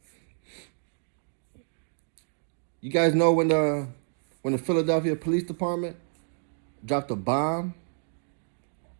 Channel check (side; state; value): left; silent; digital silence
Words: You guys know when the Philadelphia Police Department dropped a bomb